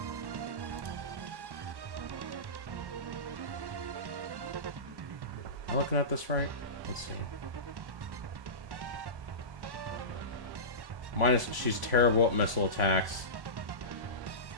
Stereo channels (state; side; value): late; left; 1.1 ms